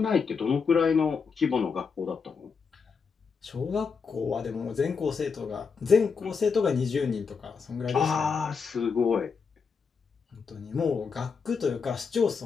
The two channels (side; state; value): right; quieter; 5.5 dB